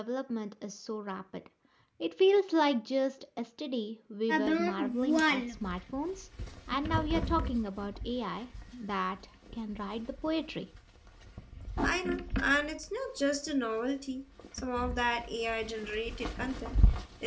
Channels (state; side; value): identical; both; correlation 1.00